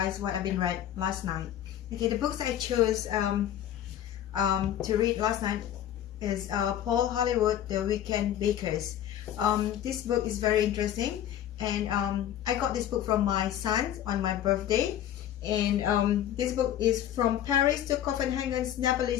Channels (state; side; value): quieter; right; 11.1 dB